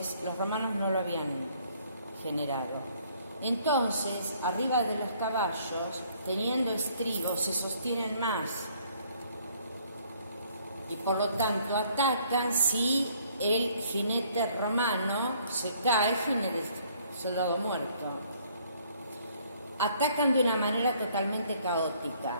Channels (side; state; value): both; inverted; correlation -0.63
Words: los romanos no lo habían generado. Entonces, arriba de los caballos, teniendo estribos, se sostienen más. Y por lo tanto atacan si el jinete romano se cae, jinete soldado muerto. Atacan de una manera totalmente caótica,